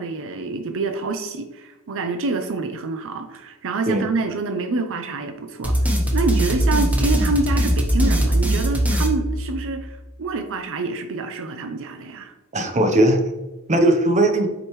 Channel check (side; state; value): both; normal; correlation 0.59